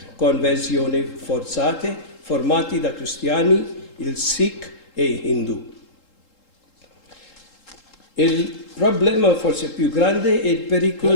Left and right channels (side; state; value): right; late; 3.8 ms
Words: conversioni forzate formati da cristiani, il Sikh e Hindu. Il problema forse più grande è il